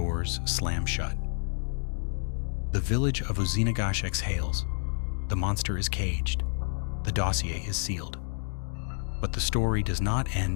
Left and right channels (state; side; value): silent; right; digital silence